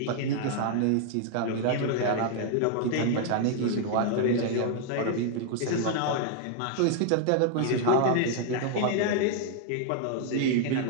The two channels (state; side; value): different; both; correlation 0.00